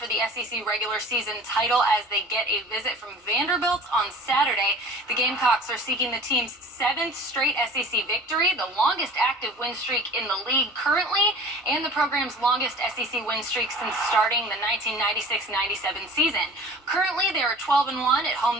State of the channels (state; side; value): normal; both; correlation 0.43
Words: the SEC regular season title as they get a visit from Vanderbilt on Saturday. The Gamecocks are seeking the team's 7th straight SEC victory, the longest active win streak in the league currently, and the program's longest SEC win streak since starting the 1996-97 season. Currently, they are 12-1 at